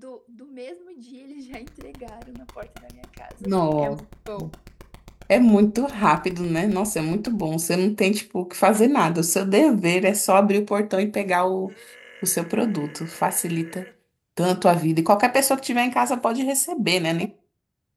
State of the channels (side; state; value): both; identical; correlation 1.00